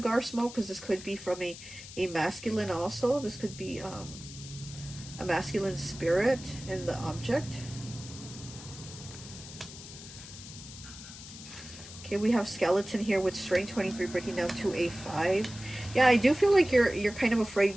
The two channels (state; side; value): noise; left; hiss, 14 dB below the sound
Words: smoke, because this could be from a masculine also. This could be a masculine spirit in the object. Okay, we have Skeleton here with Strain 23 breaking down to a 5. Yeah, I do feel like you're kind of